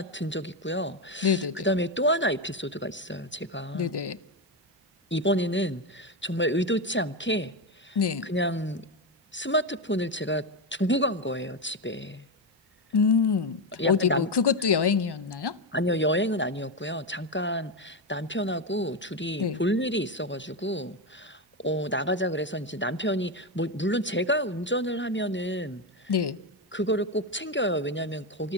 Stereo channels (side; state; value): both; normal; correlation 0.11